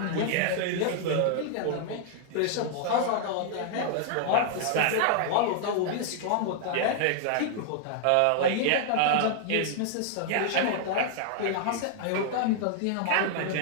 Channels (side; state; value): both; different; correlation 0.00